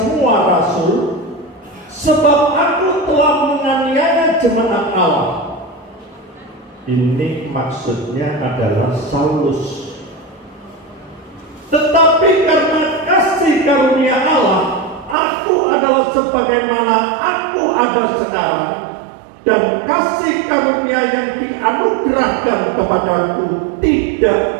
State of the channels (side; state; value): left; drops out; at 15.2 s